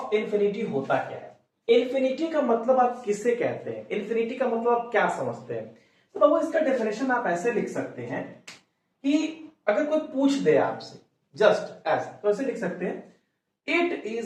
इंफिनिटी होता क्या है। इंफिनिटी का मतलब आप किससे कहते हैं? इंफिनिटी का मतलब आप क्या समझते हैं? तो बाबू इसका डेफिनेशन आप ऐसे लिख सकते हैं कि अगर कोई पूछ दे आपसे जस्ट एज, तो ऐसे लिख सकते हैं it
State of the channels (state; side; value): identical; both; correlation 1.00